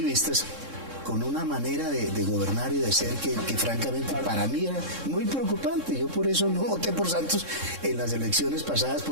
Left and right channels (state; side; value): late; left; 3.7 ms